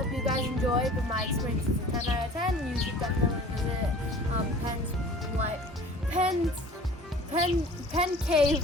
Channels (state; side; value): normal; both; correlation 0.45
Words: you guys enjoyed, but my experience is a 10 out of 10. You should definitely visit Penn Cave